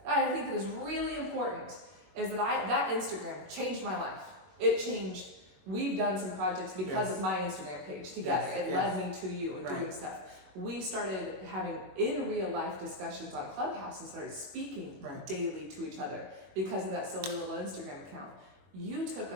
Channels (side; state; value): left; late; 21 ms